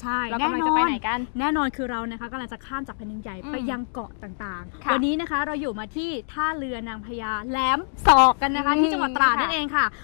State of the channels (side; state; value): right; silent; digital silence